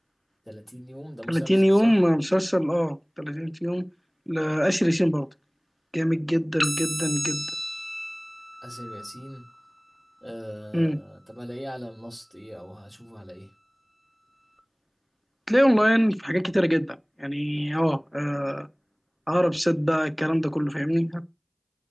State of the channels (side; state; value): both; identical; correlation 1.00